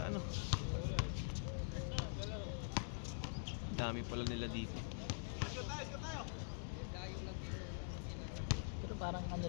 ano. Dami pala nila dito. Pero parang ano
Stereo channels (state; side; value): silent; right; digital silence